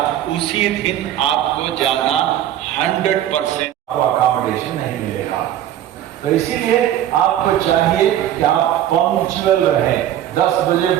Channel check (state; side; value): quieter; left; 11.6 dB